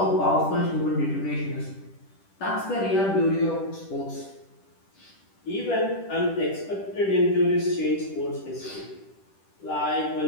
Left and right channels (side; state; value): right; late; 10 ms